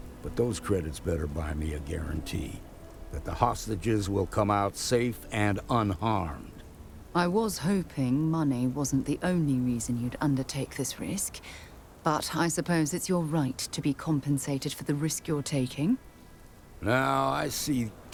But those credits better buy me a guarantee that the hostages will come out safe and unharmed. I was hoping money wasn't the only reason you'd undertake this risk. But I suppose it's your right to be compensated for the risk you're taking. Now, I see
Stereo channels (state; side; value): identical; both; correlation 1.00